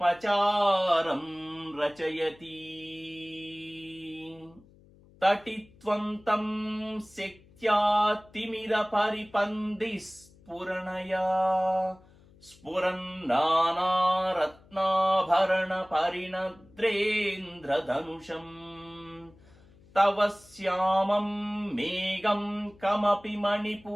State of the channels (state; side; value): noise; left; hum, 27 dB below the sound